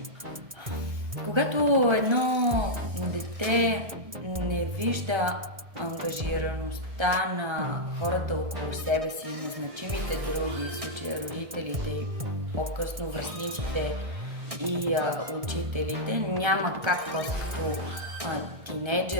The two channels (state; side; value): late; left; 1.6 ms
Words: Когато едно дете не вижда ангажираността на хората около себе си, на значимите други, в случая родителите и по-късно връстниците и учителите, няма как като